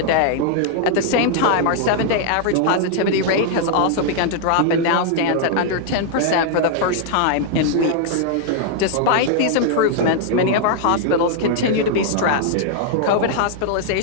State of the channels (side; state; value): both; different; correlation -0.01